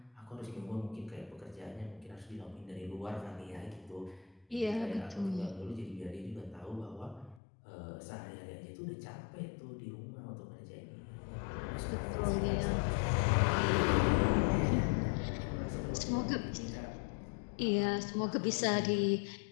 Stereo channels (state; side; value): drops out; right; at 7.4 s